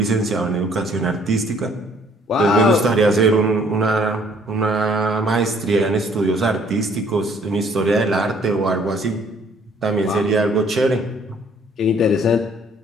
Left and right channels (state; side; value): normal; both; correlation 0.61